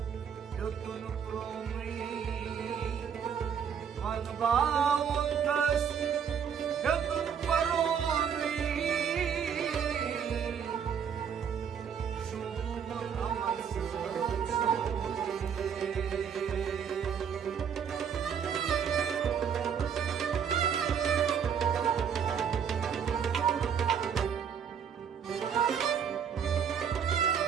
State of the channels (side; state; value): left; quieter; 7.5 dB